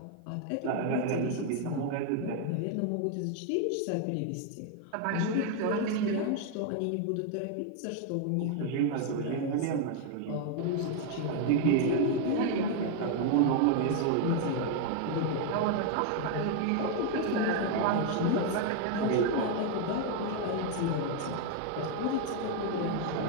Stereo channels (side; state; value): both; different; correlation 0.01